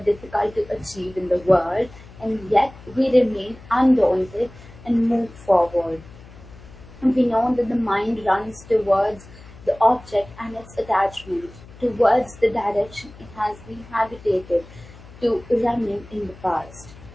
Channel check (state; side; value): noise; left; hum, 20 dB below the sound